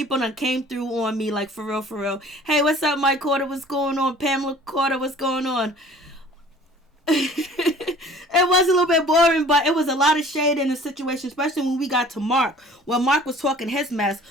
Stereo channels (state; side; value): normal; both; correlation 0.48